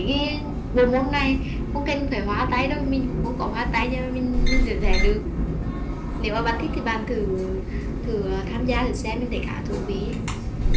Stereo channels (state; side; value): identical; both; correlation 1.00